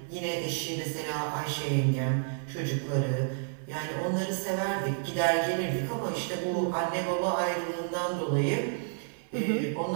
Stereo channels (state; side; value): silent; left; digital silence